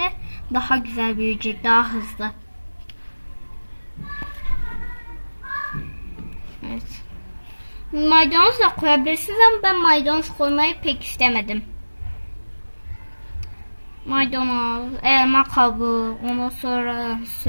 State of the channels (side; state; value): both; inverted; correlation -1.00